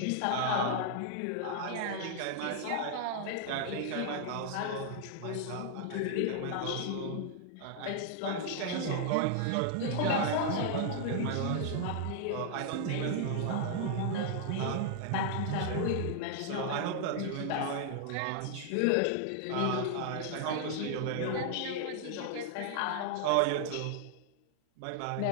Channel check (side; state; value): both; different; correlation -0.01